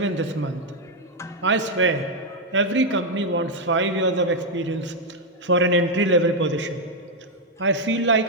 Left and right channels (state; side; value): normal; both; correlation 0.01